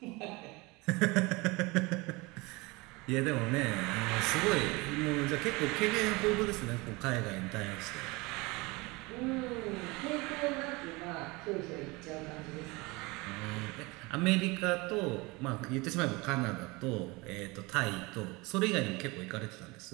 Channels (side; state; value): left; quieter; 24.5 dB